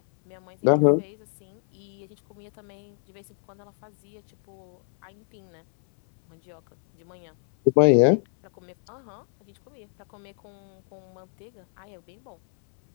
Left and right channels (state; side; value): silent; right; 60 dB below the other